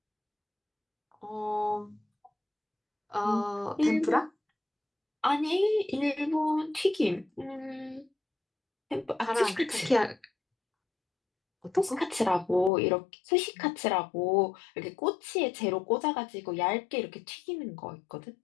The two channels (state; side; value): drops out; right; at 12.7 s